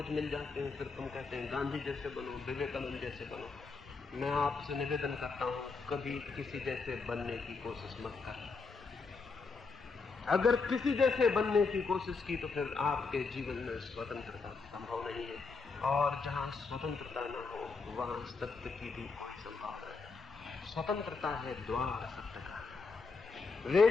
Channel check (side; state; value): right; quieter; 4.4 dB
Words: मिल जाते हैं, फिर तुम कहते हैं गांधी जैसे बनो, विवेकानंद जैसे बनो। मैं आपसे निवेदन करता हूं कभी किसी जैसे बनने की कोशिश मत कर। अगर किसी जैसे बनने की कोशिश की तो फिर आपके जीवन में स्वतंत्रता संभव नहीं है, और जहां स्वतंत्रता न हो वहां सत्य की भी कोई संभावना है। स्वतंत्रता है द्वार सत्य का। वे